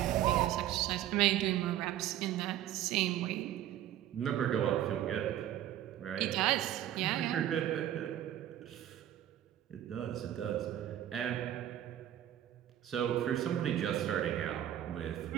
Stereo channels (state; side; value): quieter; left; 12.1 dB